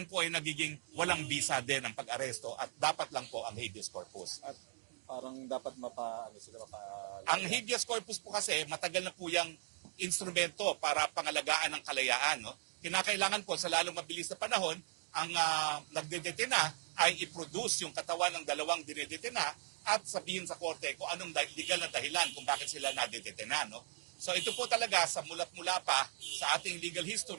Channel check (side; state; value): left; silent; 52 dB below the other